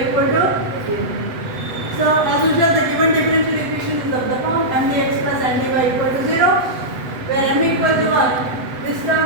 equal to 0. So as usual the given differential equation is of the form mdx plus ndy equal to 0 where m equal to 1 this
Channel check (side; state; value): left; late; 8.1 ms